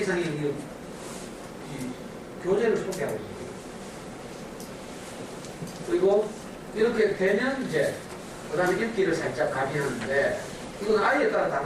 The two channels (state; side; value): identical; both; correlation 1.00